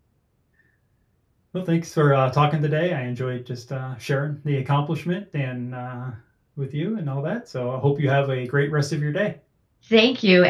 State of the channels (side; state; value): both; identical; correlation 1.00